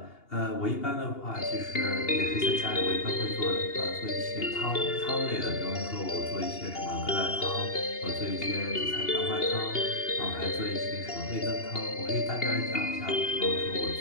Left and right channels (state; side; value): late; right; 2.8 ms